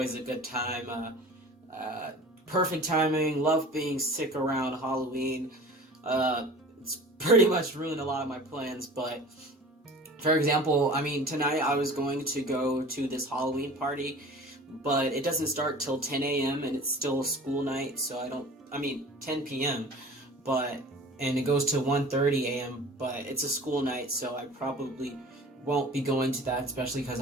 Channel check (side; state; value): both; normal; correlation 0.42